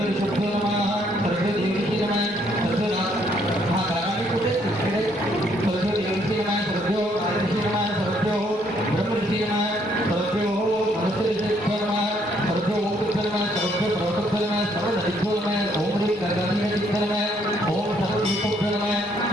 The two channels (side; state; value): both; normal; correlation 0.68